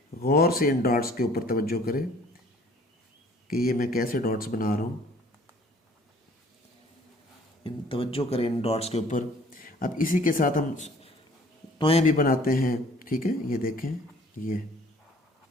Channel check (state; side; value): normal; both; correlation 0.55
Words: गौर से इन डॉट्स के ऊपर तवज्जो करें कि ये मैं कैसे डॉट्स बना रहा हूँ। इन तवज्जो करें इन डॉट्स के ऊपर। अब इसी के साथ हम टॉय भी बनाते हैं। ठीक है, ये देखें, ये